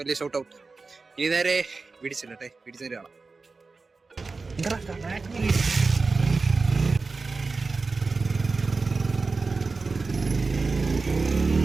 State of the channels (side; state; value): left; quieter; 4.0 dB